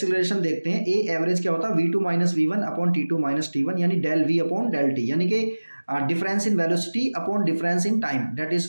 देखते हैं। ए एवरेज क्या होता है? v2 - v1 upon t2 - t1, यानी del v upon del T, यानी कि difference in velocity upon difference in time, that is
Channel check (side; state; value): both; inverted; correlation -1.00